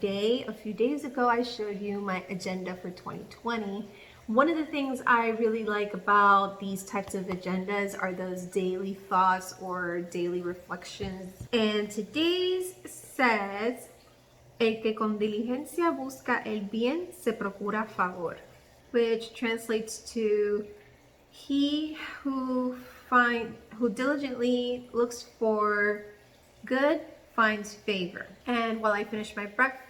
A few days ago, I showed you my agenda for 2020. One of the things I really like about these types of agendas are those daily thoughts or daily reflections. And today's says, el que con diligencia busca el bien se procura favor, which translates to he who diligently looks for good finds favor. And while I finish my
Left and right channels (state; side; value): identical; both; correlation 1.00